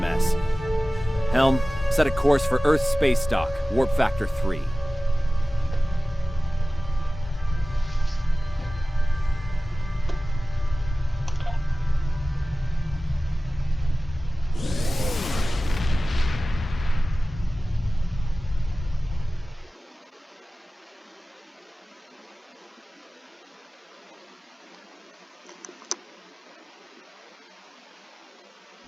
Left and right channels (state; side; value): normal; both; correlation 0.97